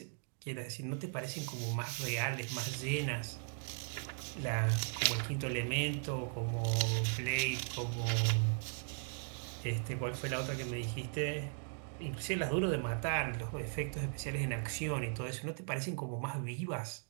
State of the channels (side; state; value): left; silent; 53 dB below the other